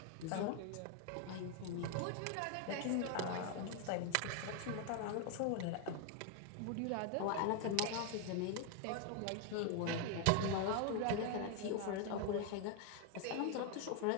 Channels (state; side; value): different; both; correlation 0.01